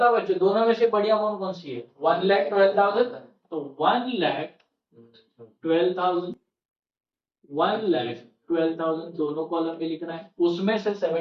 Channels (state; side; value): identical; both; correlation 1.00